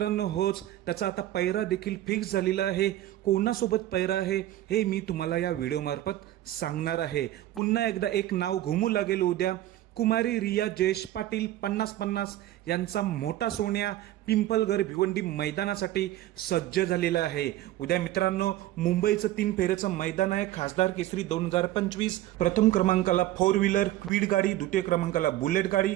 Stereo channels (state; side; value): quieter; left; 14.4 dB